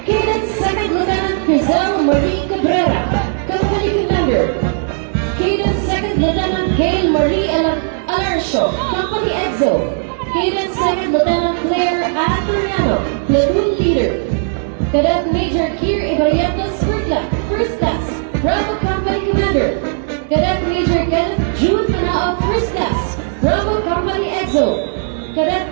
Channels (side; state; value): left; silent; 69 dB below the other